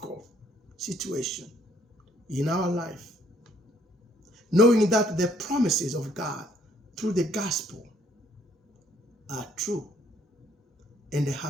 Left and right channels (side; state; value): both; normal; correlation 0.65